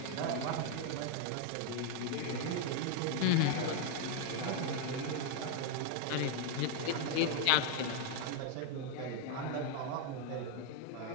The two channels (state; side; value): different; both; correlation 0.01